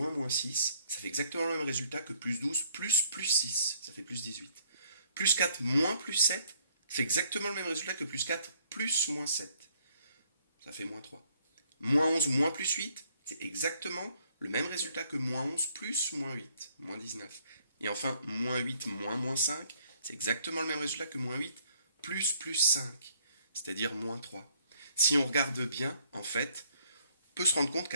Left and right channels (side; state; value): both; inverted; correlation -0.64